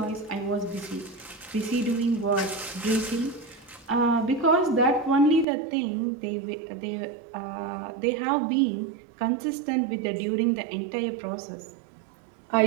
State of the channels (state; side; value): drops out; left; at 5.5 s